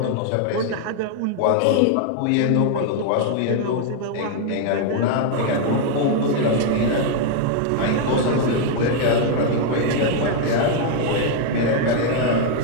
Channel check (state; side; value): different; both; correlation 0.00